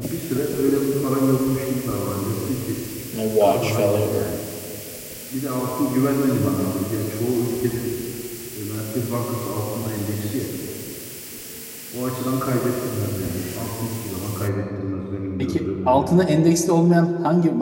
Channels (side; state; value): both; identical; correlation 1.00